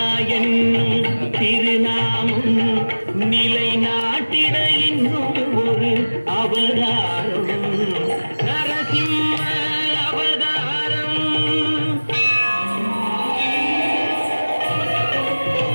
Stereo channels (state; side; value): inverted; both; correlation -1.00